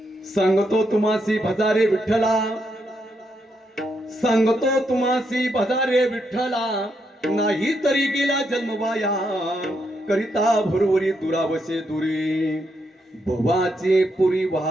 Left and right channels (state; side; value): normal; both; correlation 0.79